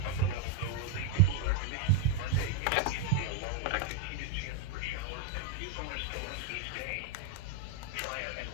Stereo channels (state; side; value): different; both; correlation 0.01